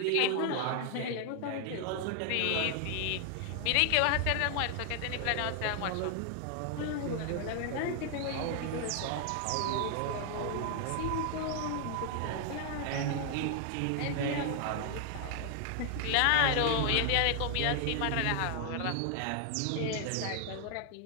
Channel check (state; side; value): different; both; correlation 0.00